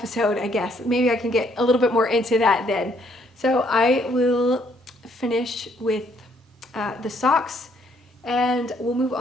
I guess. Maybe I can get a little bit more into that then. So I will finish with the socks, and we'll move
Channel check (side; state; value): both; normal; correlation 0.68